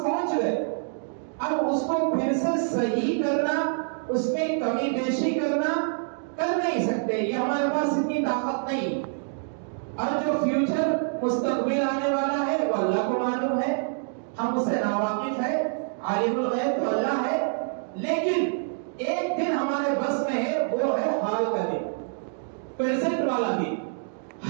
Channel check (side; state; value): left; silent; digital silence